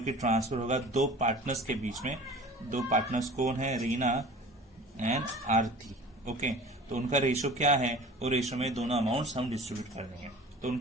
ट्रांसफर होगा दो पार्टनर्स के बीच में। दो पार्टनर्स कौन है, रीना एंड आरती। ओके, तो उनका रेशो क्या है, वो रेशो में दोनों अमाउंट्स हम डिस्ट्रीब्यूट कर देंगे। तो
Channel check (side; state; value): both; normal; correlation 0.42